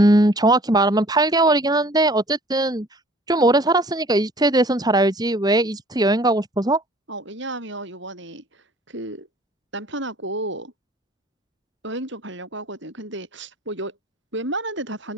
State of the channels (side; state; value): both; normal; correlation 0.53